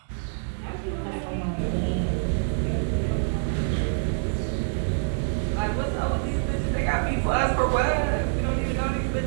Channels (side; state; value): left; silent; digital silence